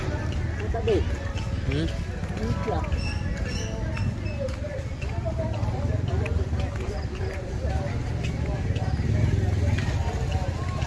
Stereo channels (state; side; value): identical; both; correlation 1.00